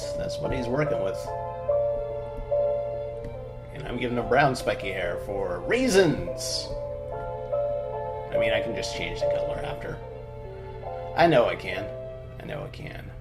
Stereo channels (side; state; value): both; identical; correlation 1.00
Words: what he's working with. And I'm giving him brown, spiky hair for reasons. I mean, I can just change the color after. I know I can. I know I can.